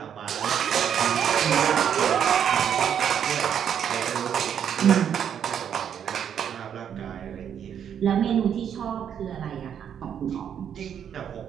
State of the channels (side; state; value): left; quieter; 8.6 dB